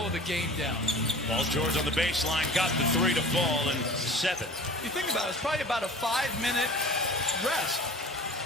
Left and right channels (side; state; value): both; normal; correlation 0.42